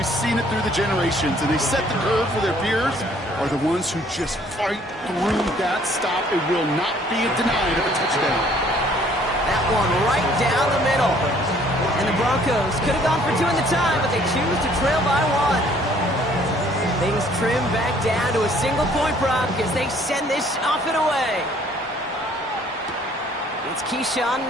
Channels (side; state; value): both; normal; correlation 0.60